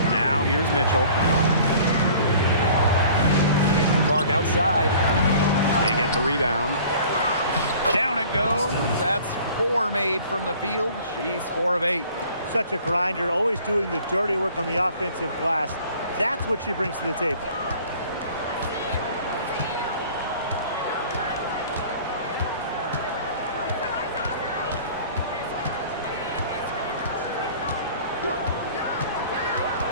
Now here's Mitchell. Clark outside. They get the rebound. Down it goes. That's 4 made from the field. She's 4 of 8. Such a grinder, always doing the dirty work on the offensive glass. That's what she brings to the table.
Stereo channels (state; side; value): inverted; both; correlation -0.49